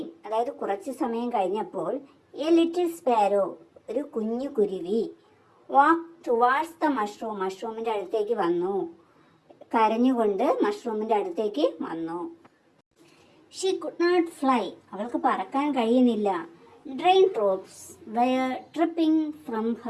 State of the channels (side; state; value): both; identical; correlation 1.00